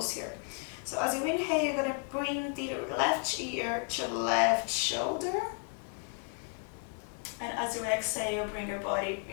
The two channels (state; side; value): quieter; right; 38.9 dB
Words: here. So as you inhale, you're going to bring the left ear to the left shoulder. And as you exhale, bring